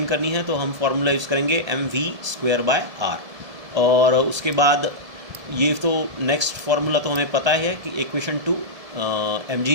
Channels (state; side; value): late; left; 1.7 ms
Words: करनी है तो हम फॉर्मूला यूज़ करेंगे mv स्क्वायर बाय r। और उसके बाद ये तो नेक्स्ट फार्मूला तो हमें पता है कि equation 2 mg